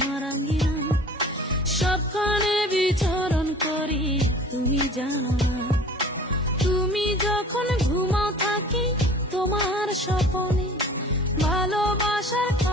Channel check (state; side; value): normal; both; correlation 0.46